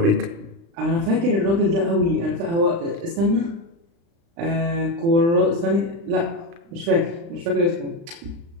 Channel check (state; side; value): late; left; 35 ms